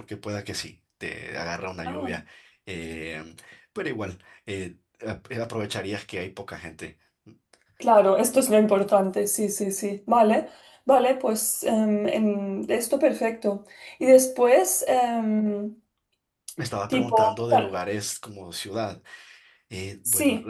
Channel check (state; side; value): identical; both; correlation 1.00